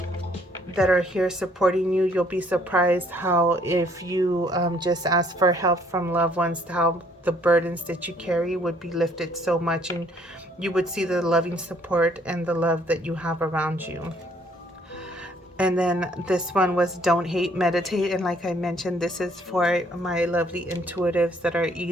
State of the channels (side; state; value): both; normal; correlation 0.63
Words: that are here supporting you. You'll be surprised how, if you just ask for help from loved ones, how the burdens that you carry would be lifted so much, and you would see the loving support and the love that you have around you. And then this one was don't hate, meditate. And like I mentioned, this is for my lovely intuitives that are